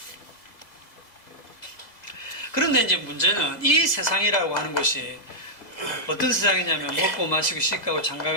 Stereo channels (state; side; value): late; right; 1.8 ms